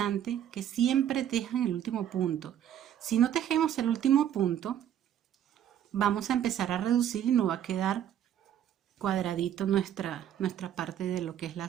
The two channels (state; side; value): quieter; left; 10.3 dB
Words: que siempre tejan el último punto. Si no tejemos el último punto, vamos a empezar a reducir y no va a quedar cuadradito nuestra parte de lo que es la